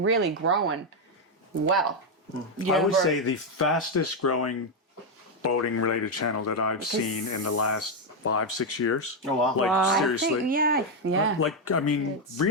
grown well. I would say the fastest growing boating related channel that I've seen in the last 5-6 years. Oh, wow. Like, I seriously. think, yeah. Like, I mean,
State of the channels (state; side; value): normal; both; correlation 0.03